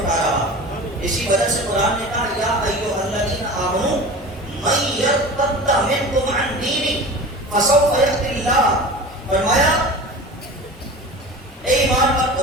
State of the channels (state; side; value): normal; both; correlation 0.35